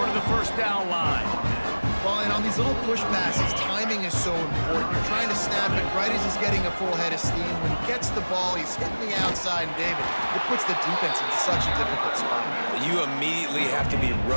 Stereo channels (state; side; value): inverted; both; correlation -1.00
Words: of the first down line? Well, and on these little push passes, timing is so important. You're trying to snap it right as he's getting a full head of steam. When he gets the ball, he's hitting the outside, and David, it puts the defense in such a difficult spot. You immediately have to be